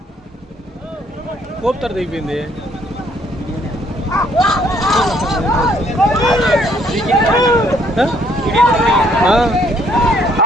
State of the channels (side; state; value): both; normal; correlation 0.66